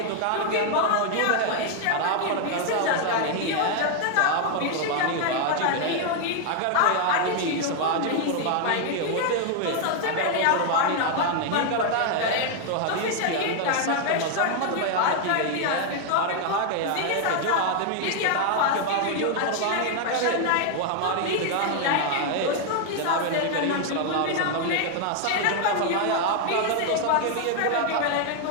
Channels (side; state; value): both; different; correlation 0.00